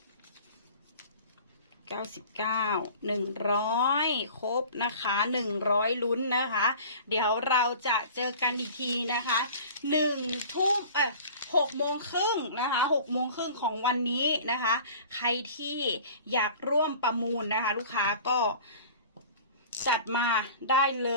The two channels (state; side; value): inverted; both; correlation -0.43